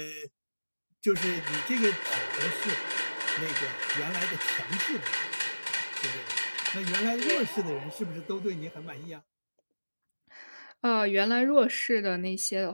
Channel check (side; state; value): both; inverted; correlation -1.00